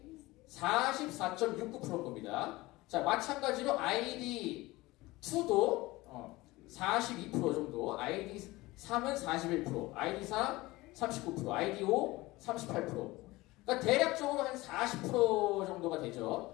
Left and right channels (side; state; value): right; quieter; 20.2 dB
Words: 44.69%인 겁니다. 자, 마찬가지로 아이디 2도 42% 정도, 아이디 3은 41%, 아이디 4 39%, 아이디 5 38%. 그러니까 대략적으로 한 40% 정도가